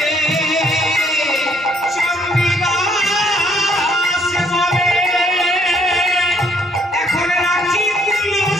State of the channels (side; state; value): both; normal; correlation 0.66